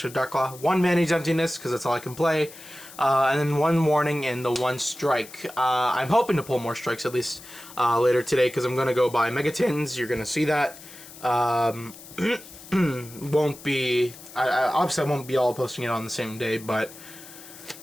Darklaw. 1 Manage Emptiness, because that's all I can play. And then 1 Warning and the 1 Strike. I'm hoping to pull more strikes at least later today because I'm going to go buy Megatins. You're going to see that. Won't be... obviously, I won't be all posting it on the same day, but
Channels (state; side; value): noise; left; hiss, 17 dB below the sound